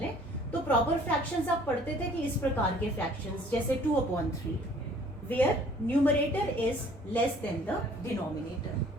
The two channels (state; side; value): normal; both; correlation 0.55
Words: तो प्रॉपर फ्रैक्शंस आप पढ़ते थे कि इस प्रकार के फ्रैक्शंस जैसे 2/3 where numerator is less than the